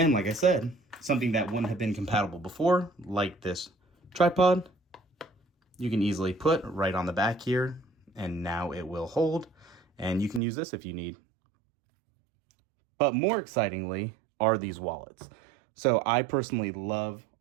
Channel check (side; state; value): left; drops out; at 10.4 s